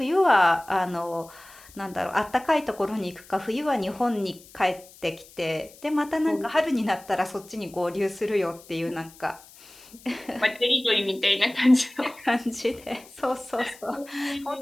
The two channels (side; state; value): left; noise; hiss, 22 dB below the sound